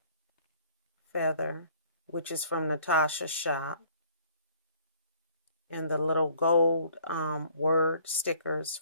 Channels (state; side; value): inverted; both; correlation -0.58